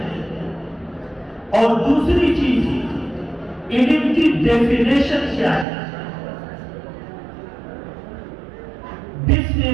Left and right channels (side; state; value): left; drops out; at 5.7 s